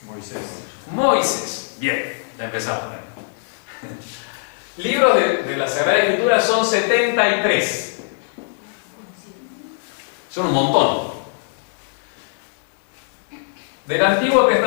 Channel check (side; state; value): right; silent; digital silence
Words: Moisés. Bien, ya empezamos. Libros de la Sagrada Escritura son 73. Son un montón. ¿Del Antiguo